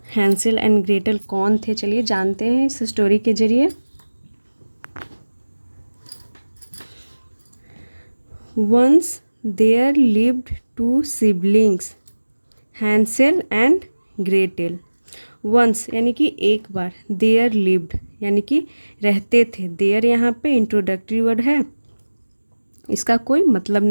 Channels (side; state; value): both; inverted; correlation -1.00